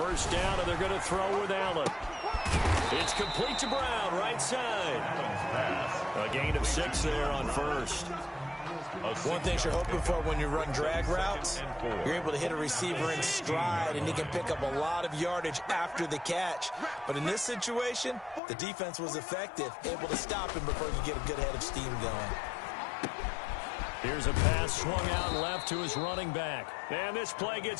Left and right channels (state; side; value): drops out; right; at 18.4 s